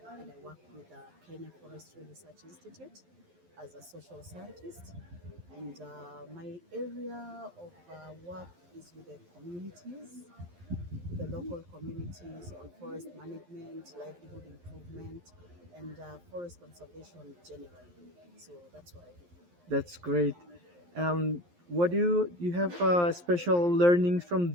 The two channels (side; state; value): left; late; 11 ms